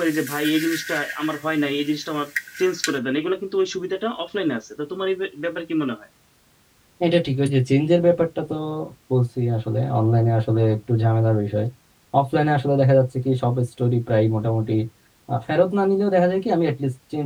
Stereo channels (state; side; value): identical; both; correlation 1.00